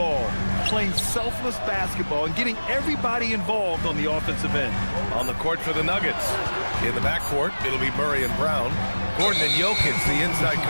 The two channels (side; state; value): both; inverted; correlation -1.00